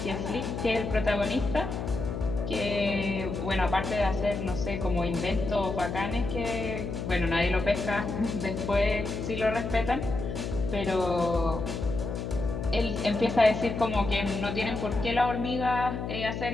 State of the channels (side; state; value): left; noise; hum, 4 dB below the sound